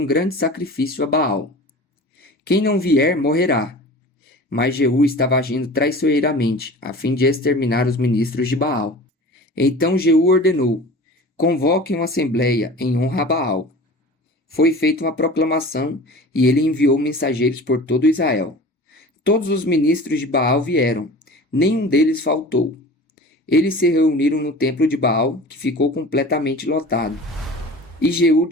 grande sacrifício a Baal. Quem não vier, morrerá. Mas Jeú estava agindo traiçoeiramente, a fim de exterminar os ministros de Baal. Então Jeú ordenou: convoquem uma assembleia em honra a Baal. Foi feita uma proclamação e ele enviou mensageiros por todo Israel. Todos os ministros de Baal vieram, nenhum deles faltou. Eles se reuniram no templo de Baal, que ficou completamente lotado. E Jeú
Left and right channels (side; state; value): both; normal; correlation 0.39